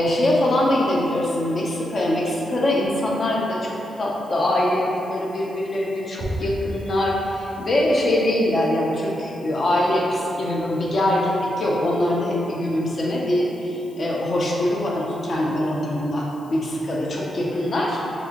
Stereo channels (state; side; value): noise; left; hiss, 29 dB below the sound